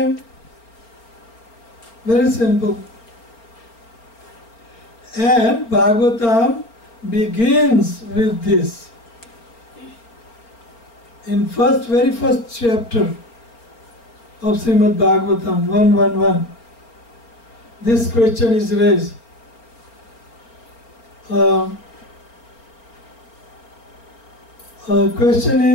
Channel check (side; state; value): right; late; 4.4 ms